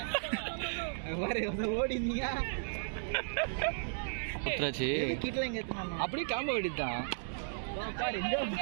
ஓடிந்தீங்க குத்துறாச்சு கிட்டல எங்க ஏத்துனாங்க அப்படியே காம்ப வேண்டியதுதான் பாரு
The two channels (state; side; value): silent; left; digital silence